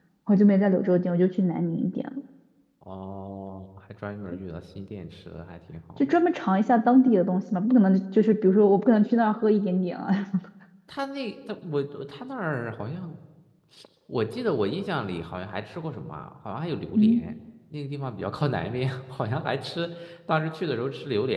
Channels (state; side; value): identical; both; correlation 1.00